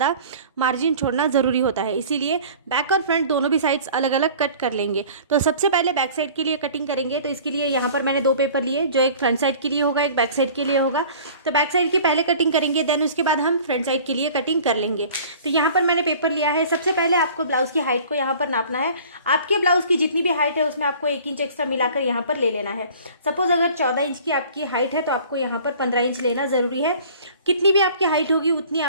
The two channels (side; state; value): both; inverted; correlation -0.46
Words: मार्जिन छोड़ना ज़रूरी होता है, इसीलिए बैक और फ्रंट दोनों भी साइड्स अलग अलग कट कर लेंगे। तो सबसे पहले बैक साइड के लिए कटिंग करेंगे। तो इसके लिए यहाँ पर मैंने 2 पेपर लिए, जो एक फ्रंट साइड के लिए होगा, एक बैक साइड के लिए होगा। तो बैक साइड की पहले कटिंग करेंगे, देन उसके बाद हम फ्रंट साइड के लिए कटिंग कर लेंगे। तो यहाँ पर मैंने पेपर लिया है। सबसे पहले आपको ब्लाउज की हाइट को यहाँ पर नापना है। आपके ब्लाउज की जितनी भी हाइट है उसमें आपको 1 इंच एक्स्ट्रा मिलाकर यहाँ पर ले लेना है। सपोज अगर 14 इंच की आपकी हाइट है तो आपको यहाँ पर 15 इंच लेना ज़रूरी है। कितनी भी आपकी हाइट होगी उतनी